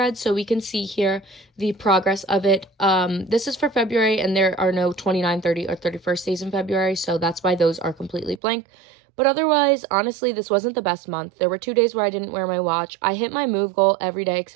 So we can see here the progress of it. This is for February, and there are no 29, 30, or 31st days in February. So that's why those are completely blank. But otherwise, honestly, this wasn't the best month. There were 2 days where I didn't wear my watch. I hit my move goal every day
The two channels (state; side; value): drops out; left; at 8.4 s